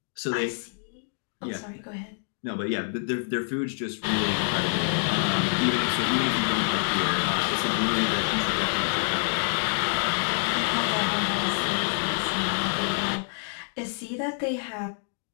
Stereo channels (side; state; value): right; silent; digital silence